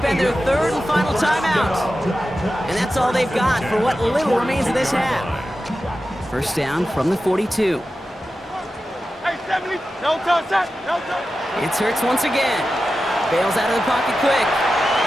their third and final timeout. And that's all they've got for what little remains of this half. First down from the 42. It's Hurts once again. Bails out of the pocket quick.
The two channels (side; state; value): both; normal; correlation 0.92